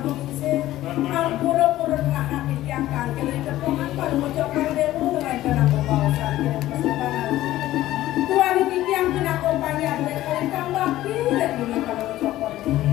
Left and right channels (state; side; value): quieter; right; 14.9 dB